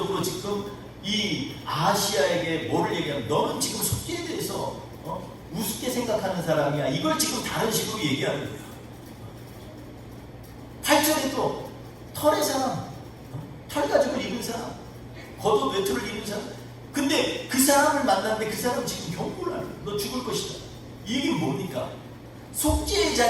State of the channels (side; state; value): both; identical; correlation 1.00